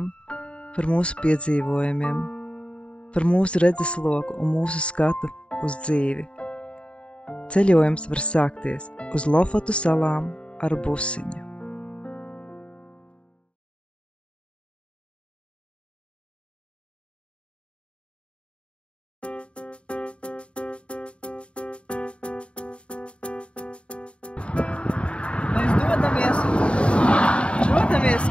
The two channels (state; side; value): late; right; 0.058 ms